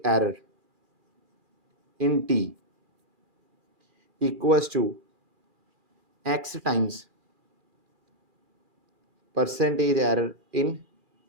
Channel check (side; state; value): left; late; 2.4 ms